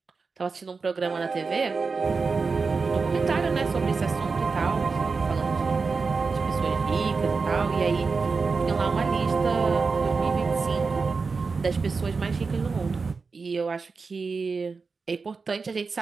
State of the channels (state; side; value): quieter; left; 4.6 dB